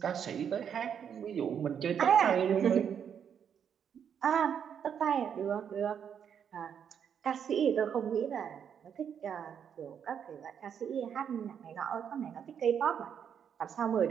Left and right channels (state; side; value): quieter; left; 8.0 dB